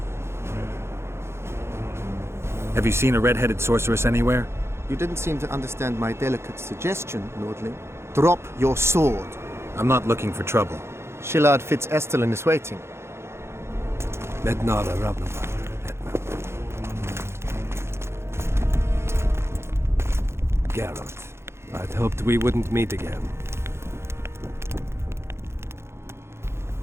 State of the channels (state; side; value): late; left; 0.12 ms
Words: Have you seen a red-headed sorceress anywhere? You didn't seem to understand my delicate suggestion, Nordling. Drop your sword. I'm not looking for trouble. Shillard Fitz-Estelin is waiting. Mednara Ravnavar, Hetman. Geralt, I'd hoped we wouldn't meet again.